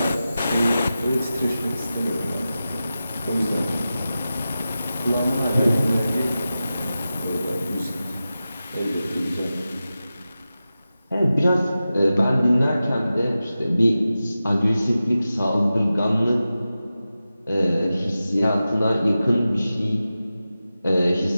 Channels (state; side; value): inverted; both; correlation -0.93